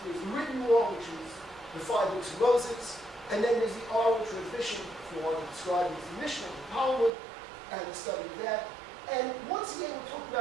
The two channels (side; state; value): left; drops out; at 7.1 s